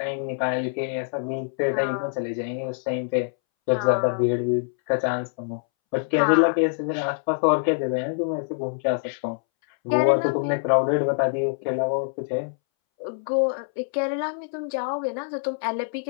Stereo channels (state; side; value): silent; right; 62 dB below the other